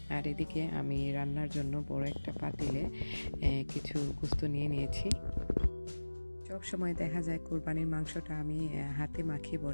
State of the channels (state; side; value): inverted; both; correlation -1.00